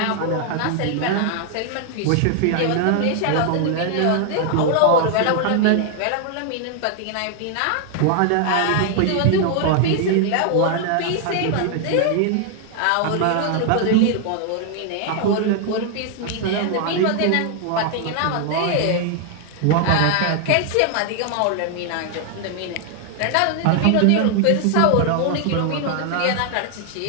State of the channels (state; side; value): different; both; correlation 0.00